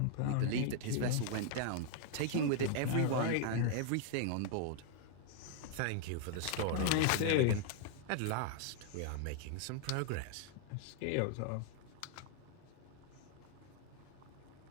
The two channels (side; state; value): both; different; correlation 0.00